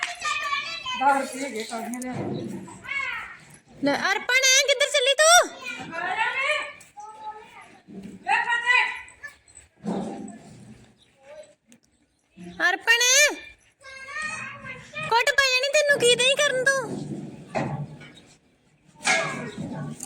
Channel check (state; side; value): identical; both; correlation 1.00